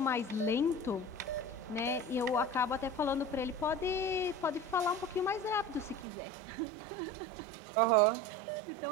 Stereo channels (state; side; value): drops out; left; at 6.1 s